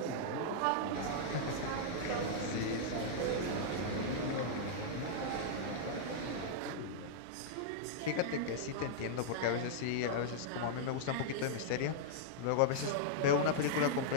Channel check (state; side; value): different; both; correlation -0.02